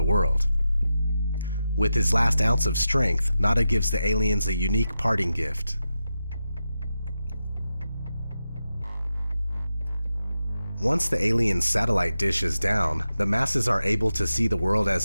world. With his last ounce of strength, Nada gives the aliens a unique parting gift. Once the aliens' satellite dish is down, the masses are able to see the world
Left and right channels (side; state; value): both; inverted; correlation -0.90